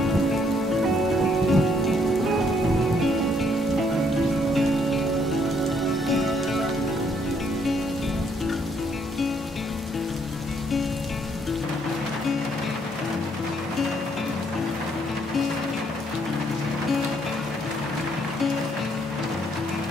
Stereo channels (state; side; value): normal; both; correlation 0.69